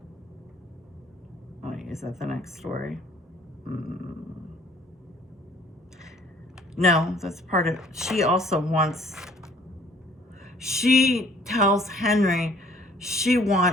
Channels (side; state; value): both; normal; correlation 0.57